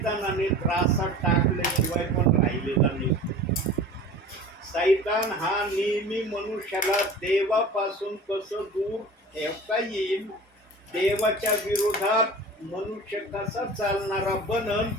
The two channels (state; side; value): normal; both; correlation 0.38